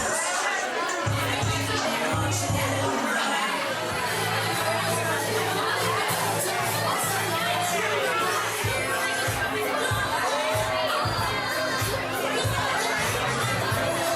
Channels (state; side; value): identical; both; correlation 1.00